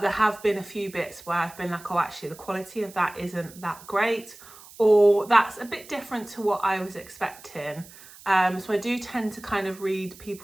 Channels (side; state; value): right; noise; hiss, 20 dB below the sound